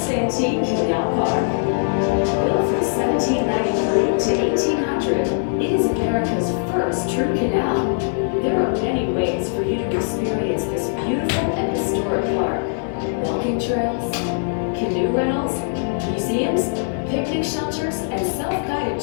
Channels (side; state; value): right; silent; digital silence